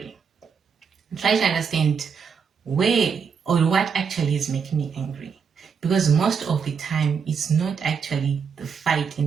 try to understand where or what actually is making me angry. Because most of the time, it's not actually the fight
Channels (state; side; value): quieter; left; 6.3 dB